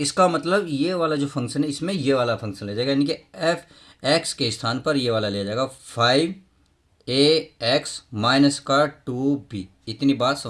मतलब ये वाला जो फंक्शन है इसमें ये वाला फंक्शन ले जाएगा, यानी कि एफ एक्स के स्थान पर ये वाला ले जाएगा 5ax माइनस का 2b। इतनी बात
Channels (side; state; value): both; identical; correlation 1.00